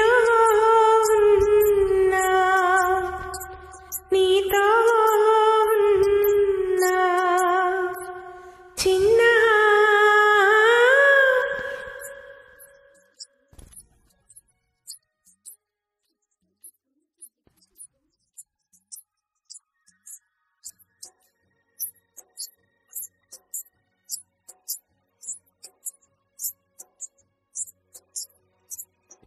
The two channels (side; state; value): both; identical; correlation 1.00